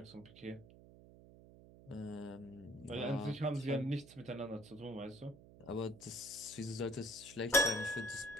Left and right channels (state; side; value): noise; right; hum, 20 dB below the sound